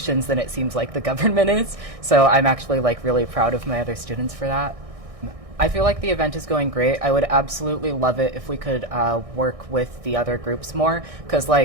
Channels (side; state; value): left; late; 1.6 ms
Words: than it seems like the government is. So I'm actually really proud of my other students for that. I feel like the event is going great. I would absolutely love it if we could work with the other groups more, because